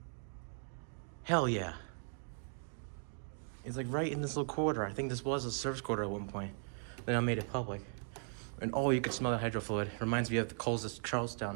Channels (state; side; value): silent; left; 52 dB below the other